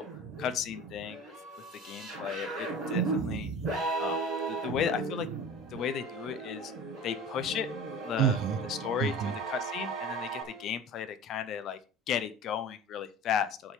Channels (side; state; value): both; normal; correlation 0.37